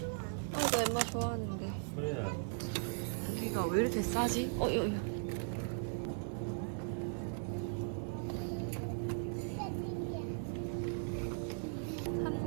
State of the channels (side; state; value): left; silent; 52 dB below the other